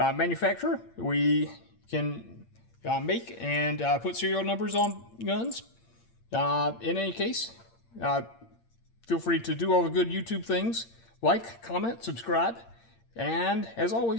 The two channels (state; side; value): late; right; 8.7 ms